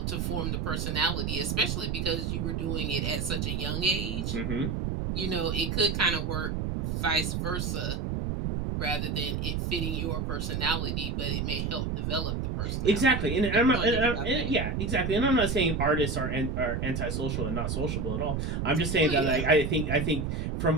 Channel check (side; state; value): right; noise; rumble, 1 dB below the sound